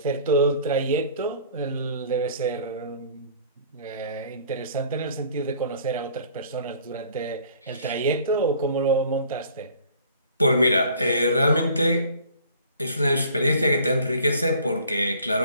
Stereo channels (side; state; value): both; inverted; correlation -0.51